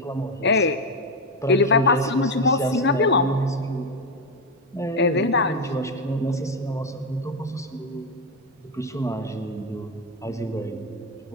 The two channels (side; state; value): both; normal; correlation 0.08